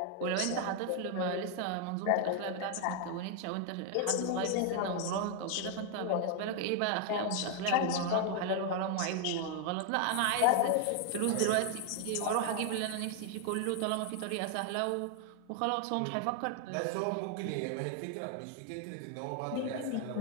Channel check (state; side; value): different; both; correlation 0.00